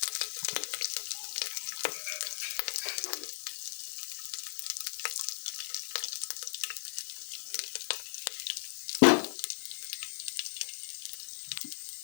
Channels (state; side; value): silent; right; digital silence